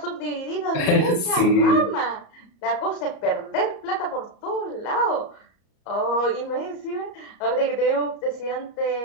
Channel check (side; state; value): right; late; 34 ms